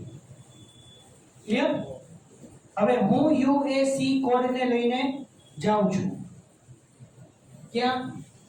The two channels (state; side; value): identical; both; correlation 1.00